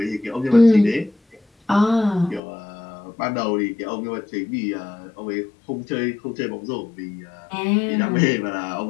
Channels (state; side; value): drops out; right; at 2.4 s